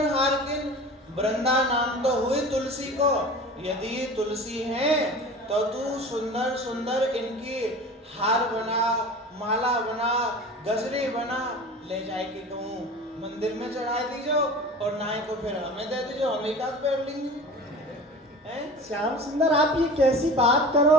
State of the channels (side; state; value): both; normal; correlation 0.37